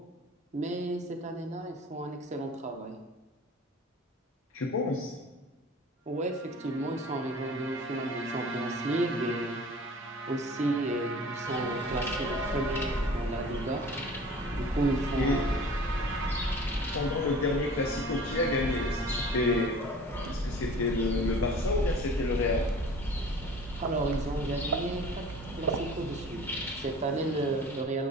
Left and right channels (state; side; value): normal; both; correlation 0.44